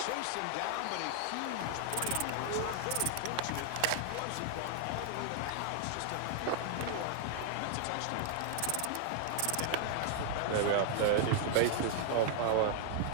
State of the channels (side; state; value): both; different; correlation -0.01